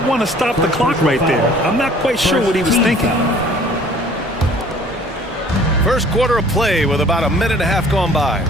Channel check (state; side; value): normal; both; correlation 0.52